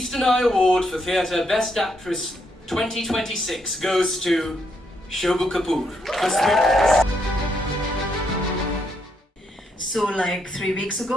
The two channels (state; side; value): normal; both; correlation 0.76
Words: Eye Award for Theatre Best Actress 2026 goes to Shobu Kapoor for Sweetness. So like 3 weeks